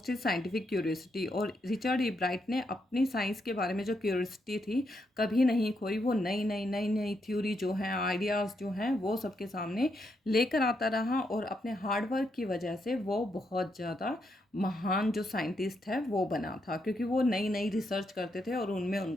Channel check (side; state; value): both; normal; correlation 0.80